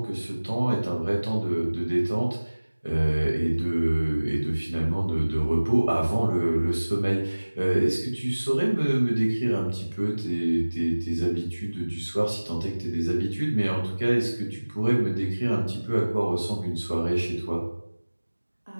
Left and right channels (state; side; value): inverted; both; correlation -1.00